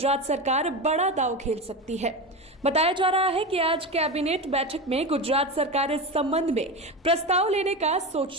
सरकार बड़ा दांव खेल सकती है। बताया जा रहा है कि आज कैबिनेट बैठक में गुजरात सरकार इस संबंध में प्रस्ताव लेने का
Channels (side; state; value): both; normal; correlation 0.21